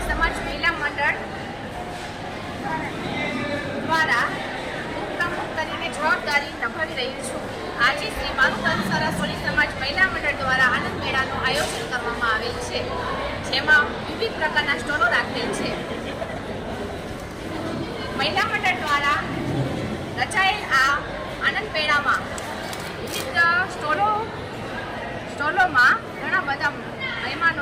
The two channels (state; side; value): identical; both; correlation 1.00